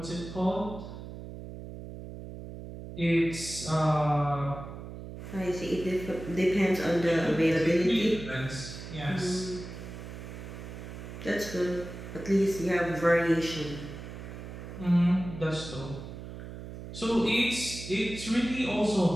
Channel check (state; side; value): noise; right; hum, 11 dB below the sound